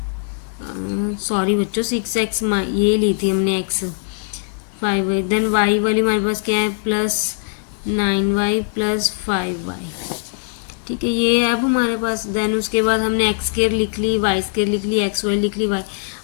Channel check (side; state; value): right; silent; 60 dB below the other